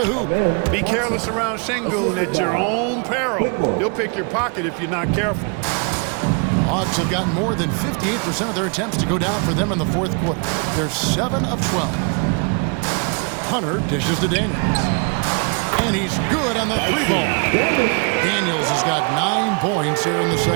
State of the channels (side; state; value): left; quieter; 36.3 dB